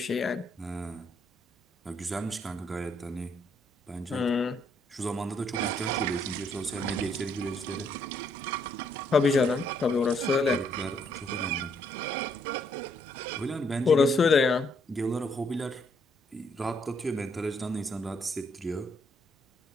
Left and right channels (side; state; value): both; normal; correlation 0.71